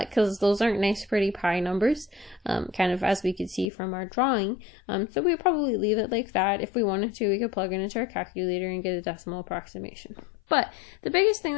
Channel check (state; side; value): drops out; right; at 3.7 s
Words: those aren't nice, pretty pi numbers, kind of as we could see from our drawing. So we probably leave it like that. If we wanted to, we could plug it into our calculator and get a decimal approximation. But the biggest thing